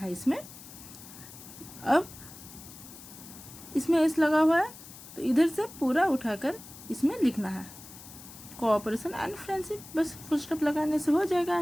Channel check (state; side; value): noise; left; hiss, 16 dB below the sound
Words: इसमें. अब इसमें एस लगा हुआ है तो इधर से पूरा उठाकर इसमें लिखना है कोऑपरेशन एंड फ्रेंडशिप. बस फुल स्टॉप लगाने से हो जाएगा